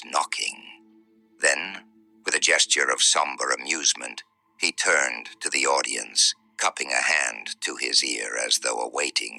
knocking. Then, with a gesture of somber amusement, he turned to the audience, cupping a hand to his ear as though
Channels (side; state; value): both; identical; correlation 1.00